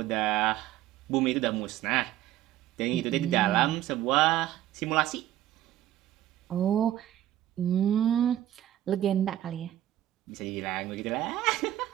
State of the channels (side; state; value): left; quieter; 13.0 dB